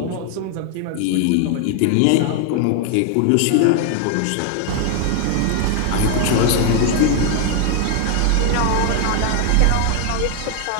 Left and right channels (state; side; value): different; both; correlation 0.00